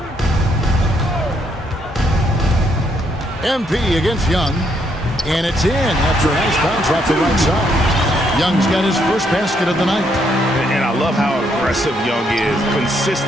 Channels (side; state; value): both; normal; correlation 0.73